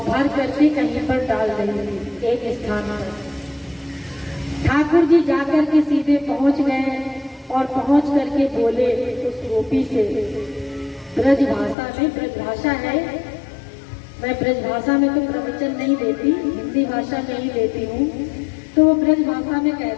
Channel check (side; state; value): right; drops out; at 11.8 s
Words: भर करके कहीं पर डाल रही थी एक स्थान पर। ठाकुर जी जाकर के सीधे पहुंच गए और पहुंच करके बोले उस गोपी से ब्रज भाषा में, ब्रज भाषा है, मैं ब्रज भाषा में तो प्रवचन नहीं देती, हिंदी भाषा में ही देती हूँ। तो वो ब्रज भाषा में